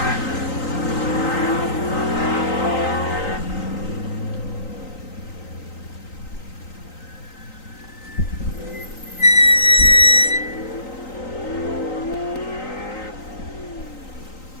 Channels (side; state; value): right; late; 3.9 ms